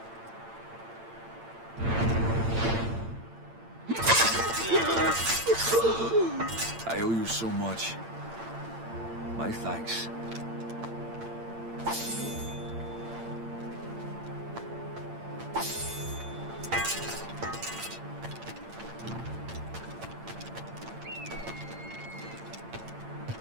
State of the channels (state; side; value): late; left; 8.8 ms